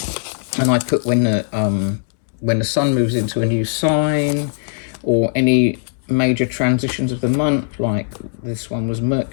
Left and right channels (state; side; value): silent; right; 62 dB below the other